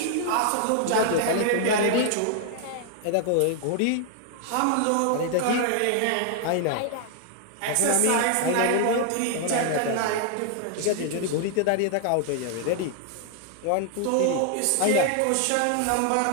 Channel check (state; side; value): different; both; correlation 0.00